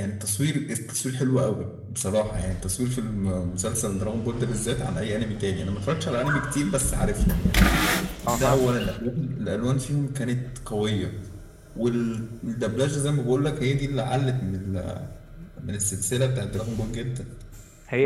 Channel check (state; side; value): identical; both; correlation 1.00